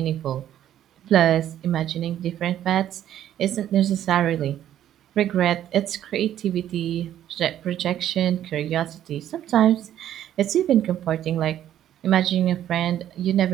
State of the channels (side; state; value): left; quieter; 11.4 dB